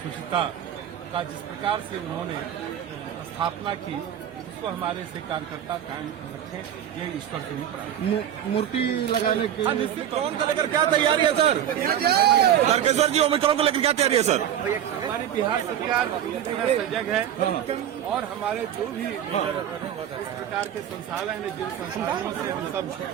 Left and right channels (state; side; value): quieter; left; 10.2 dB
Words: शुचिता का जिस प्रकार से उन्होंने स्थापना की, उसको हमारे से कार्यकर्ता कायम रखें, ये ईश्वर के ऊपर। मूर्ति लगाने के ओमिक्रॉन को लेकर क्या तैयारी है सर? सर जी, ओमिक्रॉन को लेकर क्या तैयारी है सर? हमारी बिहार सरकार पूरी तरह सजग है और हमारे जो भी इस प्रकार के संसाधन है, जिन संसाधनों से हम